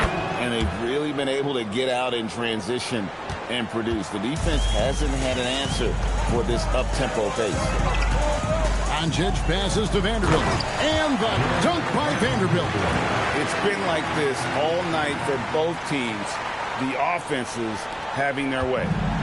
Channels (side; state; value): both; identical; correlation 1.00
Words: And they've really been able to get out in transition and produce. The defense hasn't had an answer for this up-tempo pace. Doncic passes to Vanderbilt. And the dunk by Vanderbilt. It's been like this all night for both teams. The offenses having their way.